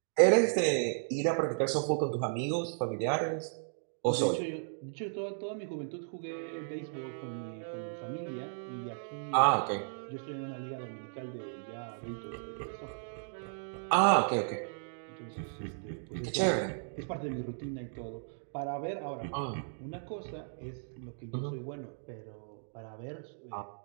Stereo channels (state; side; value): silent; left; digital silence